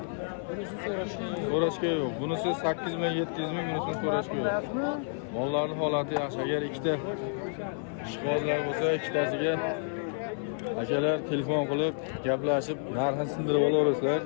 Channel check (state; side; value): silent; right; 58 dB below the other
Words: Bunisi So'rashga yo'q. Bunisi 8 million 700 ming, bunisini so'rashga yo'q. Mollarning holati yaxshi. Agar ikkita ishqibozlar bo'lsa, ikkitasiga akalar telefon qilib, gaplashib, narxini sindirib olaverasizlar.